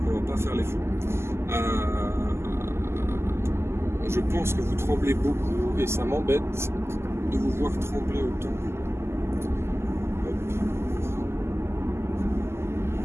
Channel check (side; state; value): left; late; 0.12 ms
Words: on va pas faire les fous. Je pense que vous tremblez beaucoup et ça m'embête de vous voir trembler autant.